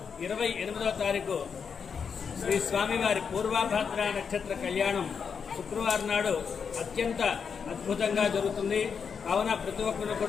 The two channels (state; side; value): quieter; right; 6.3 dB